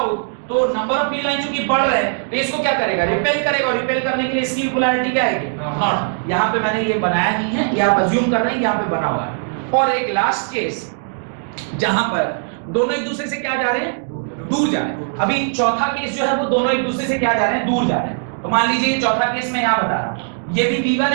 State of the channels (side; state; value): left; silent; digital silence